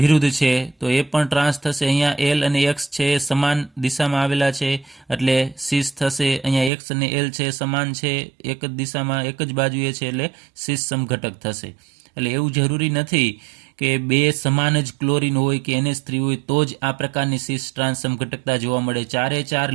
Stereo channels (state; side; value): drops out; left; at 6.7 s